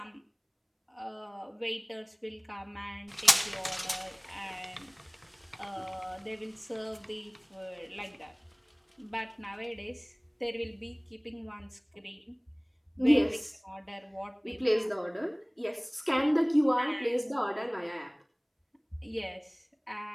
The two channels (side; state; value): both; identical; correlation 1.00